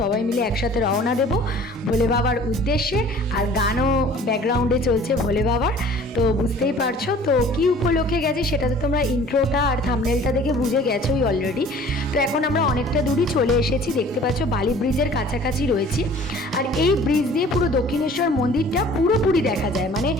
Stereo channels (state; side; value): normal; both; correlation 0.49